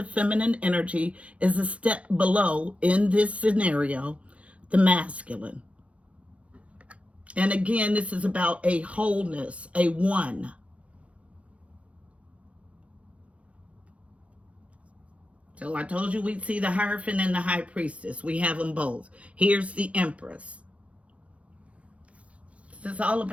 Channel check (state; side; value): late; left; 0.063 ms